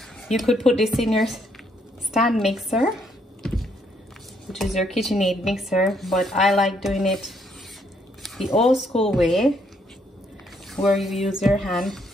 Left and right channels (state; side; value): normal; both; correlation 0.72